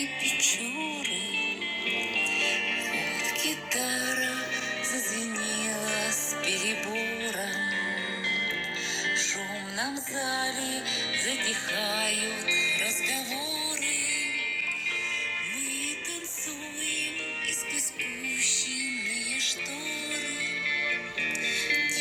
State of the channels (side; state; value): both; identical; correlation 1.00